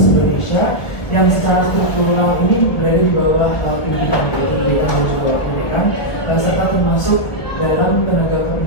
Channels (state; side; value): late; right; 1.2 ms